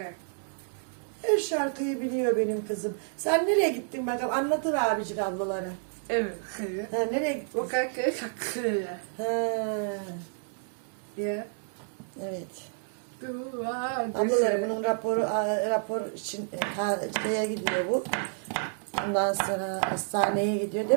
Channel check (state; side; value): silent; left; 58 dB below the other